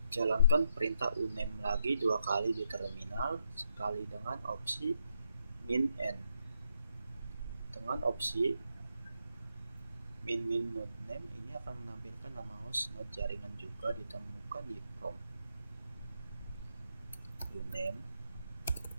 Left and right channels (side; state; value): both; inverted; correlation -0.79